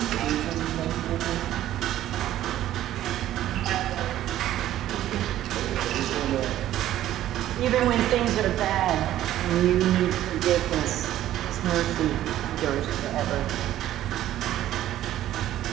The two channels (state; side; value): quieter; left; 13.0 dB